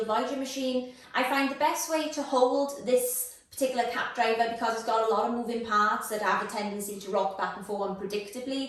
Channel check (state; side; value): identical; both; correlation 1.00